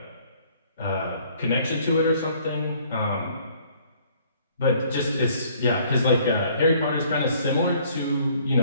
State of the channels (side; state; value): both; inverted; correlation -0.60